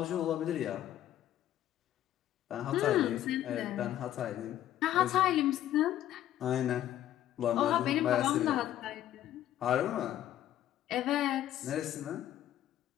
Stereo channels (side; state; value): right; quieter; 12.4 dB